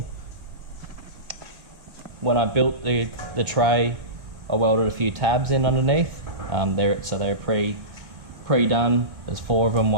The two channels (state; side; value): late; left; 2.1 ms